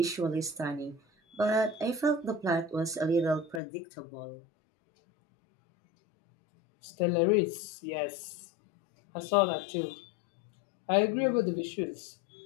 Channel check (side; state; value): right; drops out; at 3.6 s